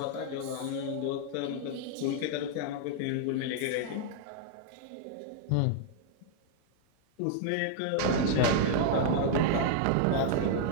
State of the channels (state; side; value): different; both; correlation -0.01